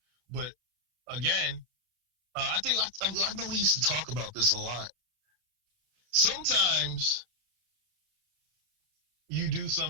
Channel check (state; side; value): late; left; 32 ms